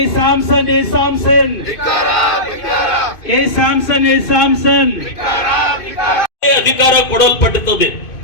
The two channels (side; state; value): right; late; 2.5 ms